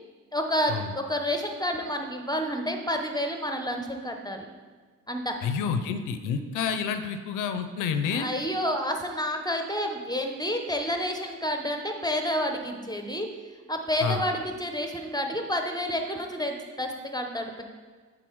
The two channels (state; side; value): normal; both; correlation 0.31